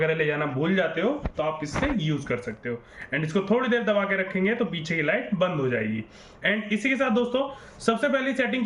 ले जाना भूल जाते हो तो आप इससे यूज कर सकते हो। एंड इसको थोड़ी देर दबा के रखेंगे तो पीछे की लाइट बंद हो जाएगी। एंड इसी के साथ दोस्तों सबसे पहली सेटिंग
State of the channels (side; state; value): both; identical; correlation 1.00